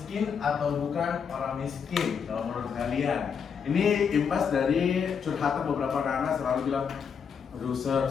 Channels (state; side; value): quieter; right; 6.7 dB